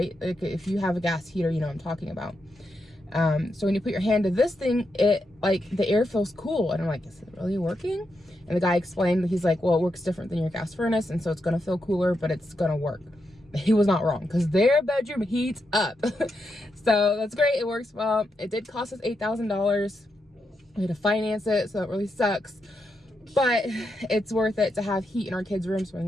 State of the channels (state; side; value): normal; both; correlation 0.84